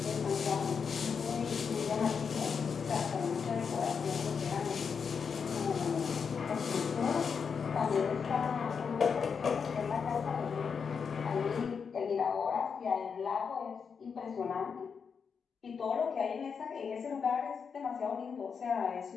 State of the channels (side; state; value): right; quieter; 6.1 dB